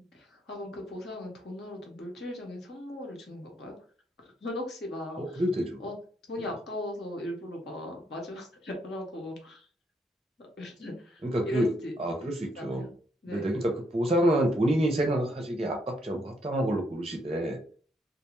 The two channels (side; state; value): both; normal; correlation 0.74